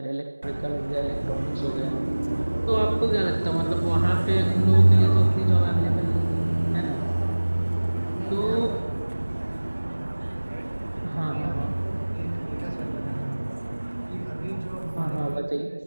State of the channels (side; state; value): both; inverted; correlation -1.00